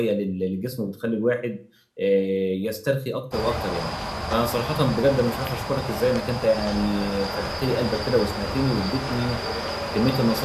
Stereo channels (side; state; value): both; identical; correlation 1.00